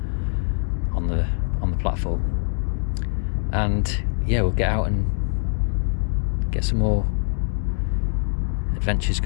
on the platform. And yeah, we'll get out and get some more adventures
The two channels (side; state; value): right; silent; 63 dB below the other